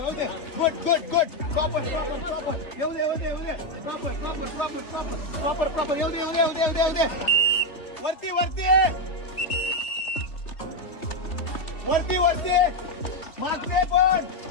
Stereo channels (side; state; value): right; late; 3.3 ms